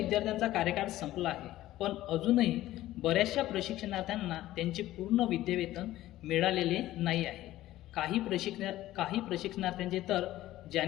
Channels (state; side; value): quieter; right; 15.1 dB